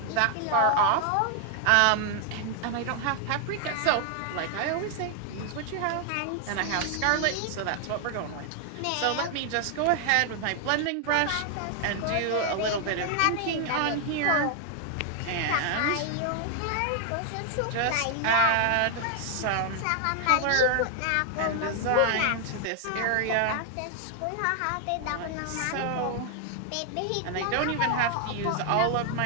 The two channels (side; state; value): both; different; correlation 0.00